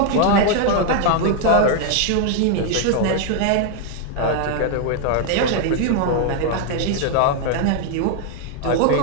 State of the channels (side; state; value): both; different; correlation 0.00